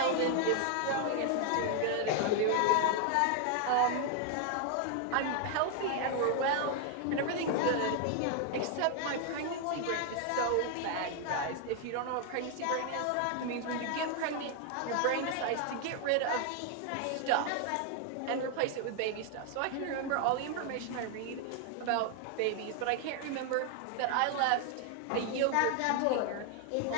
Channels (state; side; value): different; both; correlation 0.00